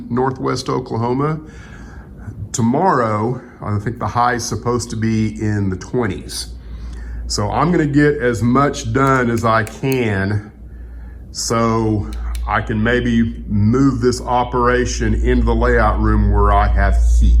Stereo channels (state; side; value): identical; both; correlation 1.00